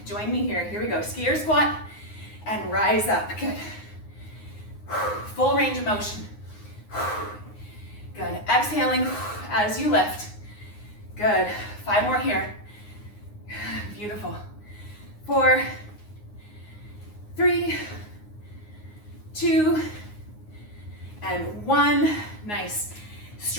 join me here. Here we go. Skier squat and rise up. Good. Full range of motion. Good. Exhaling as you lift. Good. 5 more here. Beautiful. 4, 3, 2, and 1. Nice.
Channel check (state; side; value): late; right; 9.6 ms